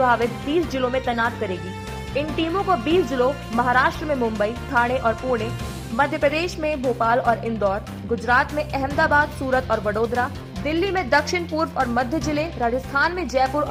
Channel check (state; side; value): identical; both; correlation 1.00